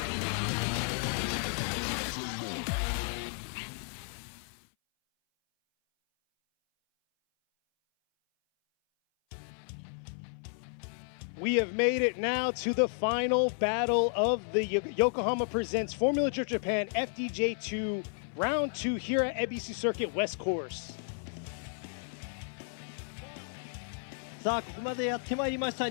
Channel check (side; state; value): right; silent; 56 dB below the other